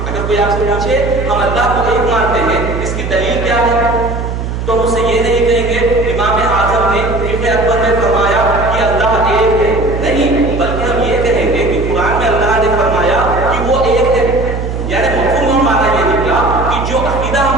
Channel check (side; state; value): right; noise; hum, 4 dB below the sound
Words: اگر کوئی آپ سے پوچھے ہم اللہ کو ایک مانتے ہیں, اس کی دلیل کیا ہے, تو ہم اسے یہ نہیں کہیں گے امام اعظم نے ابن اکبر میں فرمایا کہ اللہ ایک ہے, نہیں, بلکہ ہم یہ کہیں گے کہ قرآن میں اللہ نے فرمایا کہ وہ ایک ہے. یعنی مفہوم ہمارا یہ نکلا کہ جو عقیدہ